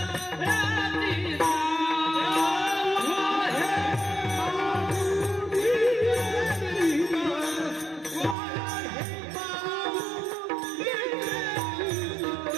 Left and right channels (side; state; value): left; drops out; at 8.3 s